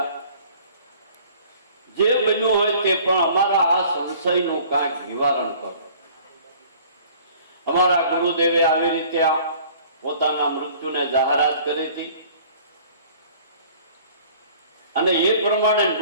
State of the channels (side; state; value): both; inverted; correlation -0.51